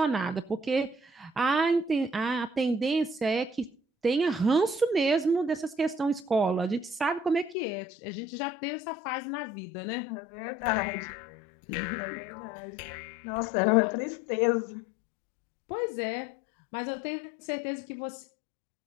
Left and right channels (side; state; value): right; drops out; at 7.6 s